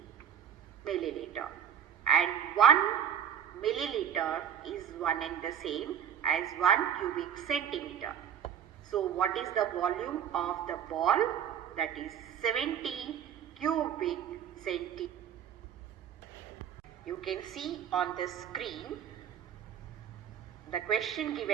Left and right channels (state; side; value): quieter; left; 8.9 dB